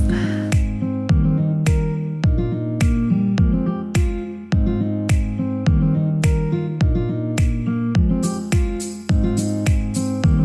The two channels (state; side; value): identical; both; correlation 1.00